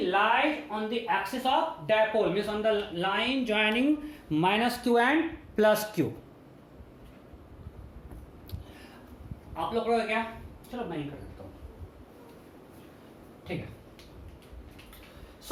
lies on the axis of dipole, means on the line joining -q and +q. आप लोग करोगे क्या? चलो मैं ही कर देता हूं. ठीक है.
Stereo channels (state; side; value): identical; both; correlation 1.00